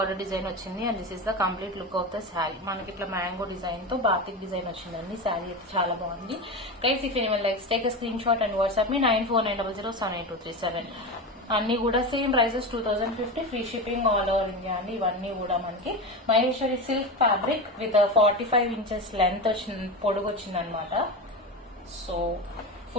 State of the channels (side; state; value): both; normal; correlation 0.22